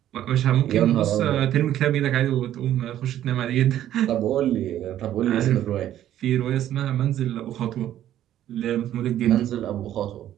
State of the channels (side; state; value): left; quieter; 12.0 dB